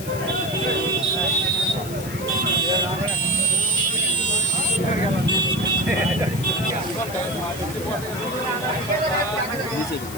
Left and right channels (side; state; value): left; noise; hiss, 13 dB below the sound